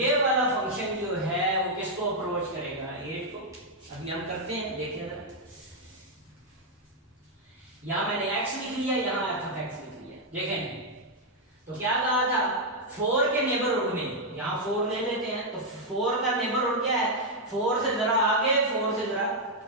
वाला फंक्शन जो है वो किसको अप्रोच करेगा 8 को। अभी हम करते हैं, देखिए जरा, यहां मैंने x लिख लिया, यहां f of x लिख लिया। देखें तो क्या कहा था 4 के नेबरहुड में, यहां 4 ले लेते हैं तो 4 का नेबरहुड क्या है 4 से जरा आगे 4 से जरा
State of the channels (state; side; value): normal; both; correlation -0.02